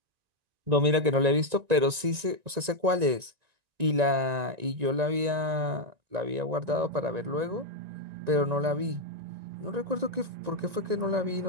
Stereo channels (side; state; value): left; late; 1.9 ms